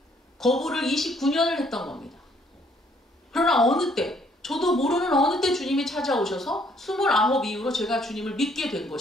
거부를 29년을 했던 겁니다. 그러나 어느 때, 저도 모르는 어느 때 주님이 찾아오셔서 29 이후로 제가 주님을 믿게 된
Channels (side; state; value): both; normal; correlation 0.65